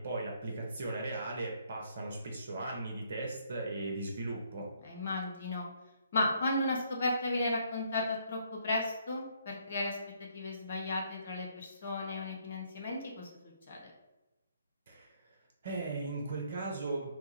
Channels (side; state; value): both; inverted; correlation -0.68